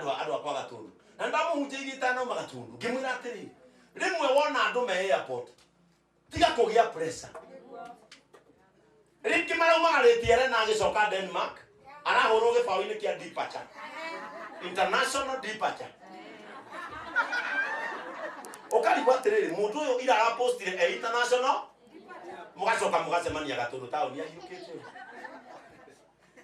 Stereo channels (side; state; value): both; identical; correlation 1.00